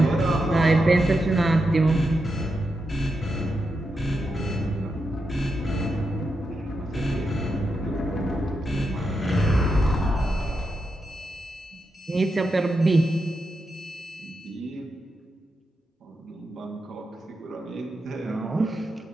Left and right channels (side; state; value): both; normal; correlation 0.86